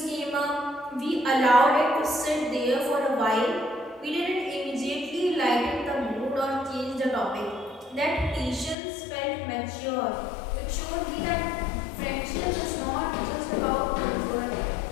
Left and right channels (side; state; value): right; drops out; at 8.8 s